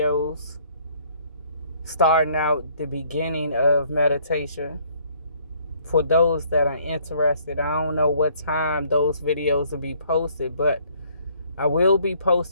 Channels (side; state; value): both; inverted; correlation -0.63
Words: starting out the beginning of meditation for those that are interested. I don't know what time those videos will be posted, but I will be